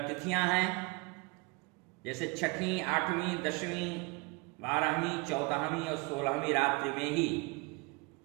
तिथियां हैं, जैसे 6वीं, 8वीं, 10वीं, 12वीं, 14वीं और 16वीं रात्रि में ही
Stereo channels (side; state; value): left; quieter; 27.6 dB